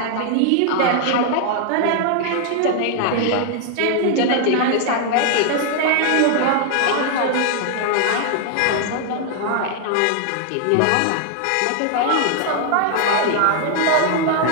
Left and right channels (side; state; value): both; different; correlation 0.00